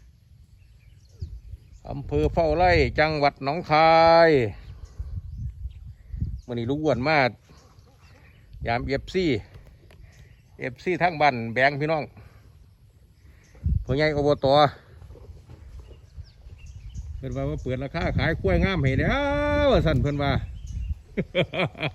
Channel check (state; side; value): identical; both; correlation 1.00